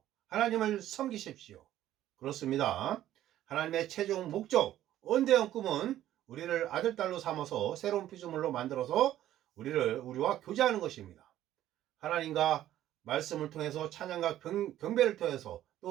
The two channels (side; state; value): left; quieter; 12.8 dB